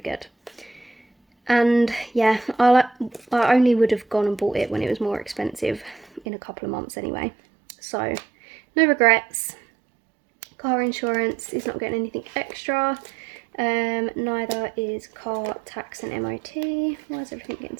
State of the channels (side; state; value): left; drops out; at 6.2 s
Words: good. And yeah, I only would have gone and bought it when it was more expensive in a couple of months anyway. So no regrets. Car insurance is not getting anything extra. Neither is car tax and MOT. Why is everything getting